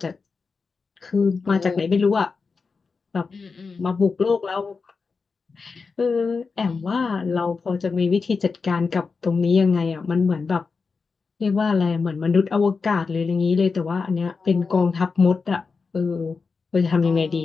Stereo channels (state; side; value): quieter; right; 4.7 dB